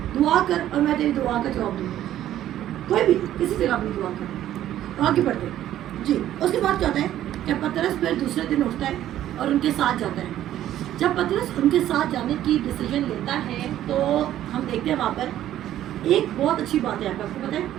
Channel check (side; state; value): left; quieter; 12.4 dB